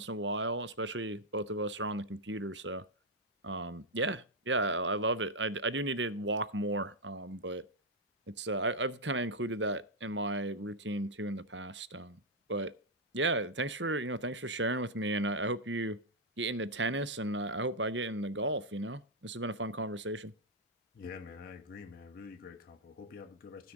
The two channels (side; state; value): both; normal; correlation -0.02